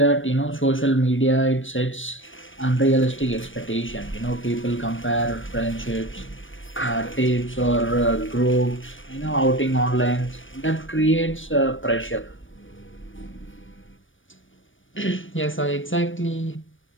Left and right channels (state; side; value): late; right; 0.57 ms